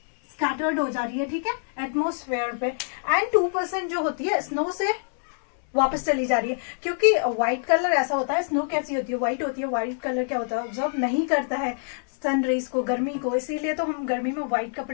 स्कैटर्ड हो जा रही है, ठीक है, एटमोस्फेयर पे। एंड 2% जो होती है स्नो से वापस चली जा रही है, क्योंकि व्हाइट कलर ऐसा होता है, स्नो कैसी होती है, व्हाइट होती है। व्हाइट कलर क्या होता है, ऑब्जर्व नहीं करता है सन रेज को, गर्मी को, इसीलिए तो हम गर्मी में व्हाइट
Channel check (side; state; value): right; silent; 61 dB below the other